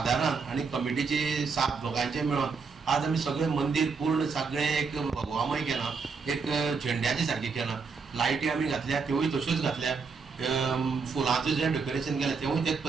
आनी कमिटीचे 7 लोकांचे मेळोन आज आमी सगळे मंदिर पूर्ण सगळे एक भगवामय केला, एक झेंड्याची सारखी केला, लायटी आमी घातल्या त्योय तश्योच घातल्या, फुलांचें जें डेकोरेशन केलें तेवूय तेच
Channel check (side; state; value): left; quieter; 5.1 dB